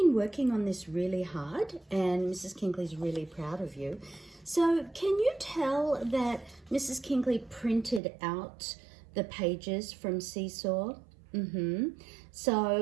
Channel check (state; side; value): drops out; left; at 8.0 s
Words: working on this really hard and Mrs. Kinkley's really proud of you. So can you tell that Mrs. Kinkley printed out the pages from Seesaw?